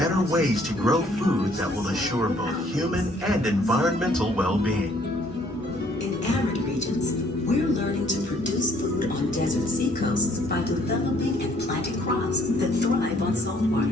ways to grow food that will assure both human and environmental well-being. In arid regions, we're learning to produce food on desert seacoasts by developing and planting crops that thrive on salt water.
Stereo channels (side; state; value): both; normal; correlation 0.62